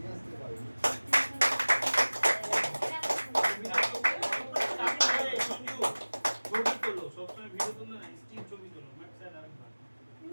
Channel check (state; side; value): inverted; both; correlation -1.00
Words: আসতে পারবে। সবসময় ভিডিও তুললে না, স্টিল ছবি তোলো। ম্যাম স্যার আরেকবার